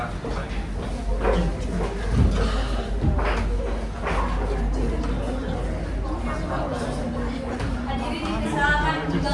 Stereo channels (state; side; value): identical; both; correlation 1.00